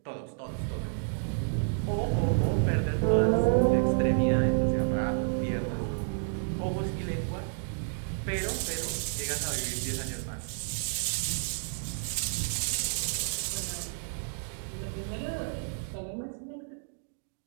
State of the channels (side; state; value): left; silent; digital silence